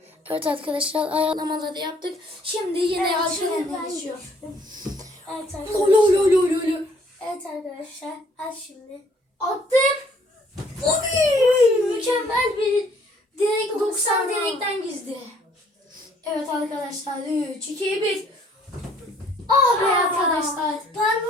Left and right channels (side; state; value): both; normal; correlation 0.62